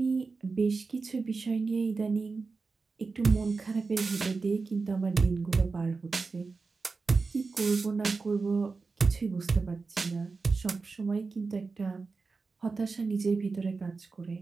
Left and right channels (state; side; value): quieter; left; 4.3 dB